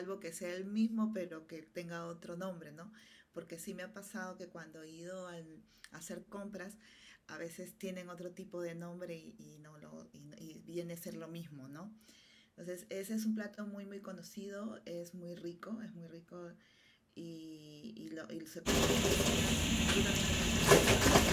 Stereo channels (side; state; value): both; identical; correlation 1.00